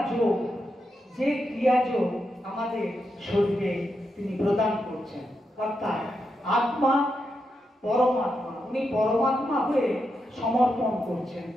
যে ক্রিয়াযোগ আমাদের শরীরে তিনি প্রদান করছেন। অর্থাৎ আত্মা পরমাত্মা, উনি পরমাত্মা হয়ে সমর্পণ করছেন।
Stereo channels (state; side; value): normal; both; correlation 0.85